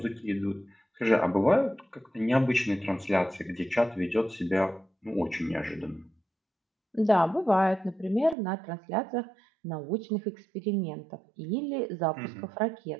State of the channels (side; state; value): left; drops out; at 8.3 s